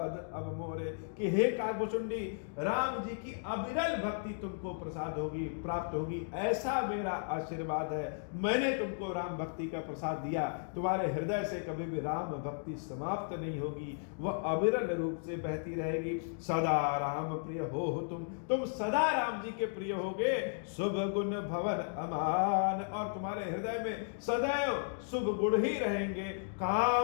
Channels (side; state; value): right; silent; digital silence